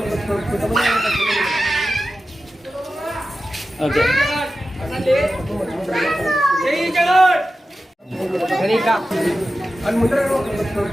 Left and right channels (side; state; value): both; normal; correlation 0.93